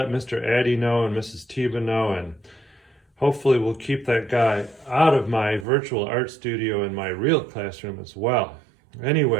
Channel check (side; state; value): left; drops out; at 5.7 s